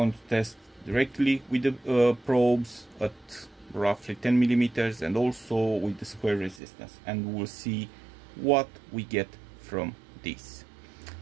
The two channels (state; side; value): drops out; left; at 6.6 s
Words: to test directly with the probes at roughly 10 millimeters and also with the square resistance, and we'll see what we get from this.